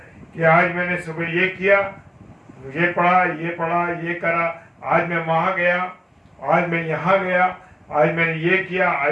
कि आज मैंने सुबह ये किया, ये पढ़ा, ये करा, आज मैं वहां गया, आज मैं यहाँ गया, आज मैंने ये किया,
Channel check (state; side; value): identical; both; correlation 1.00